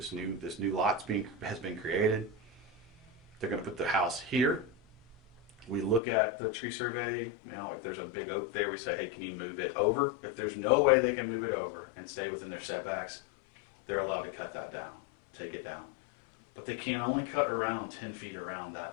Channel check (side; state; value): right; drops out; at 6.0 s